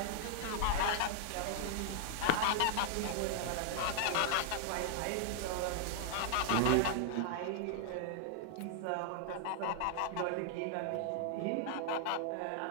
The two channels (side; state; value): both; different; correlation 0.00